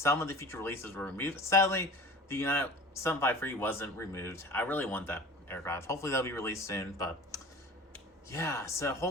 of the future releases were removed. Sadly, the United 753 wasn't removed. I really want that aircraft. Hopefully that'll be released soon, but yeah, so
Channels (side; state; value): both; normal; correlation 0.40